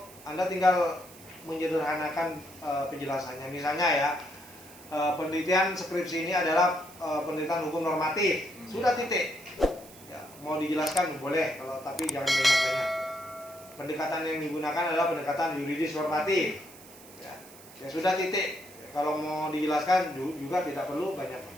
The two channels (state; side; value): noise; right; hiss, 20 dB below the sound